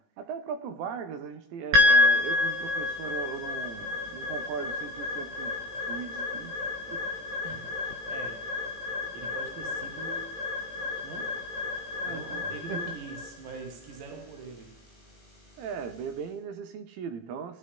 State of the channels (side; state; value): left; late; 18 ms